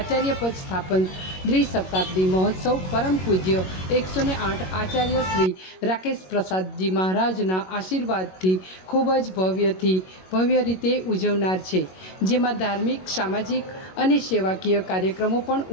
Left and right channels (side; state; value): right; late; 21 ms